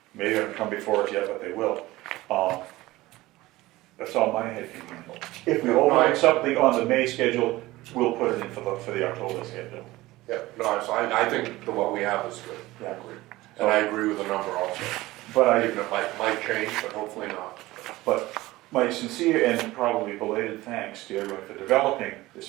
maybe haven't come before us yet, but they will. That's all my head can handle. If we override something on the May schedule, we'll put it in for the October schedule. Yeah, no, so I think what we have is good. Yeah. And I agree with the number also. But Even it might change, but hopefully not. But my sincere and probably belated thanks to everyone for developing the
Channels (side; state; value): left; quieter; 18.5 dB